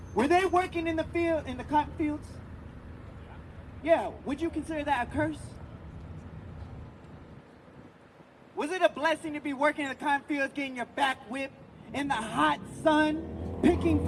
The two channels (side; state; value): both; identical; correlation 1.00